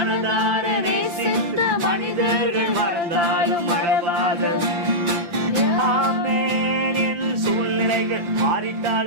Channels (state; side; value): late; left; 5.8 ms